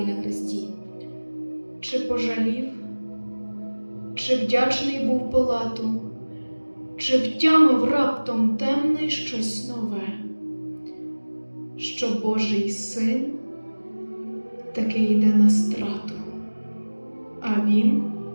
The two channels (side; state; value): both; inverted; correlation -1.00